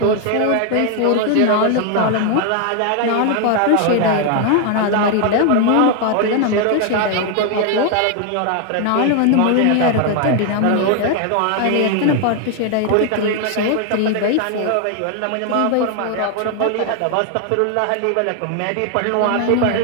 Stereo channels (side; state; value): both; different; correlation 0.00